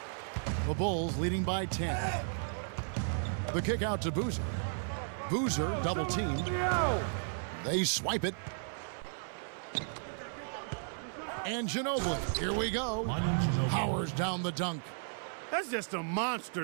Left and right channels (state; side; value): silent; left; 55 dB below the other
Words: The Bulls leading by 10. The kick out to Boozer. Boozer double teamed. They swipe it. And Ginobili. Here we go. Powers down the dunk. That's just a